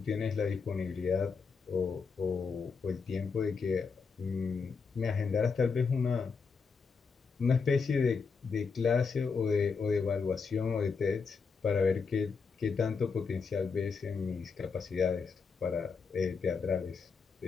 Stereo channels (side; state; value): right; quieter; 5.2 dB